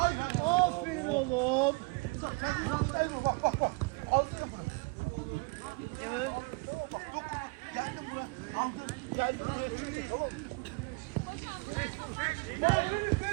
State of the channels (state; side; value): quieter; left; 29.7 dB